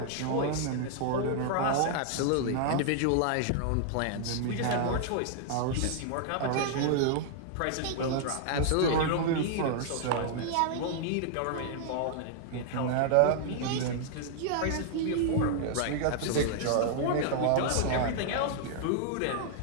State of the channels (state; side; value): different; both; correlation -0.01